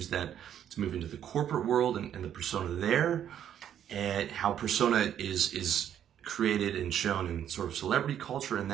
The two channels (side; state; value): left; quieter; 10.0 dB